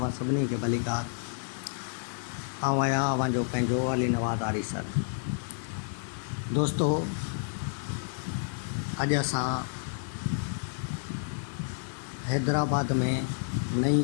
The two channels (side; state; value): right; silent; digital silence